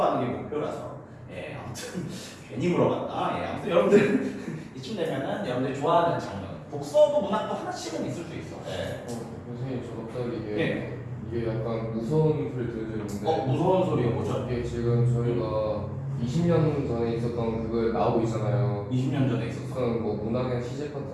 게 목표라서, 아무튼 괜히 물어봤다. 아무튼 여러분들 이쯤 되면은 여러분들이 좋아하는 장르, 독서도 문학도 하나씩은 있을 수 있어. 선생님 저 갑자기 이게 약간 무서운 소리 들려주는데 무서운 소리가 뭐죠? 이게 지금 저희가 20년 전에 있었던 그걸 나오고 있잖아요. 20년 전에 있었어. 뭐 문학의 시제 같은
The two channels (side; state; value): both; identical; correlation 1.00